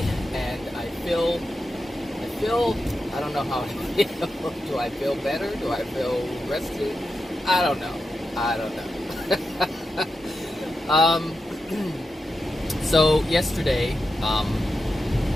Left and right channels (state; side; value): normal; both; correlation 0.89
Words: and I feel. I don't know how I feel. Do I feel better? Do I feel rested? I don't know. So yesterday's